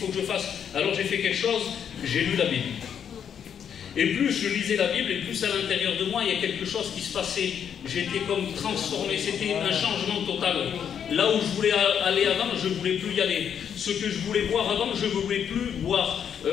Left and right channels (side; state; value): right; quieter; 8.2 dB